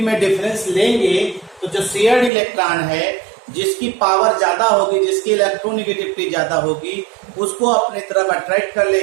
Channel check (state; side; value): drops out; left; at 2.3 s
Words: डिफरेंस लेंगे तो जो शेयर्ड इलेक्ट्रॉन है, जिसकी पावर ज्यादा होगी, जिसकी इलेक्ट्रोनेगेटिविटी ज्यादा होगी, उसको अपनी तरफ अट्रैक्ट कर